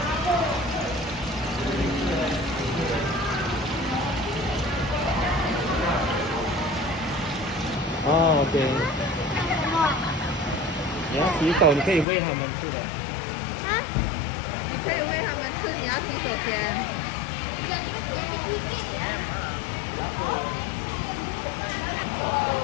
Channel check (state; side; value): drops out; right; at 12.1 s